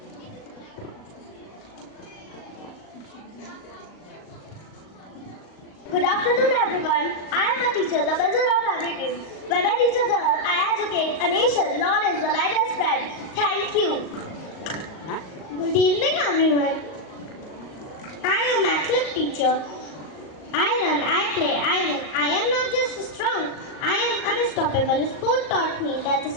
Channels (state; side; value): late; right; 38 ms